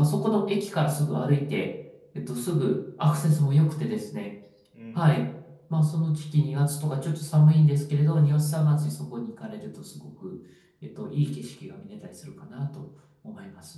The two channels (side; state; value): both; identical; correlation 1.00